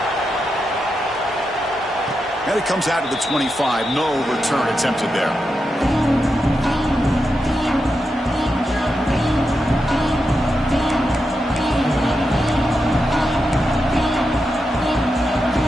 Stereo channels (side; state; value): both; normal; correlation 0.87